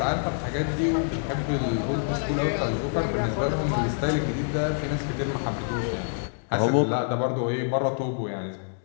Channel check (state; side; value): silent; right; digital silence